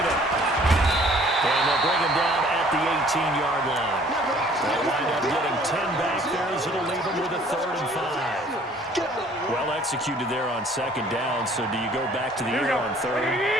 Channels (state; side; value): normal; both; correlation 0.56